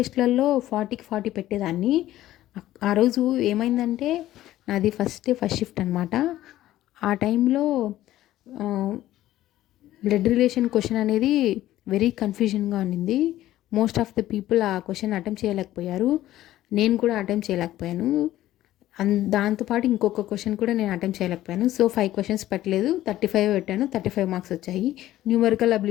40కి 40 పెట్టేదాన్ని. ఆ రోజు ఏమైందంటే నాది ఫస్ట్ షిఫ్ట్ అనమాట. ఆ టైంలో బ్లడ్ రిలేషన్ క్వశ్చన్ అనేది వెరీ కన్ఫ్యూజన్గా ఉన్నింది. మోస్ట్ ఆఫ్ ద పీపుల్ ఆ క్వశ్చన్ అటెంప్ట్ చేయలేకపోయారు. నేను కూడా అటెంప్ట్ చేయలేకపోయాను. దాంతోపాటు ఇంకొక క్వశ్చన్ కూడా నేను అటెంప్ట్ చేయలేకపోయాను. సో 5 క్వశ్చన్స్ పెట్టలేదు, 35 పెట్టాను, 35 మార్క్స్ వచ్చాయి. న్యూమరికల్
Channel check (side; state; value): right; quieter; 14.3 dB